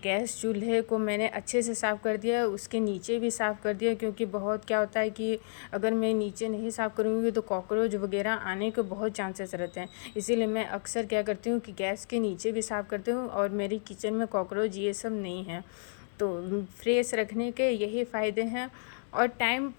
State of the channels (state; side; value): silent; right; digital silence